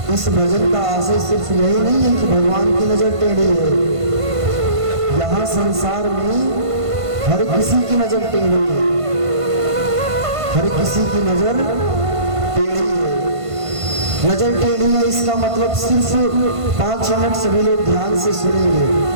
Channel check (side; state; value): left; late; 1.5 ms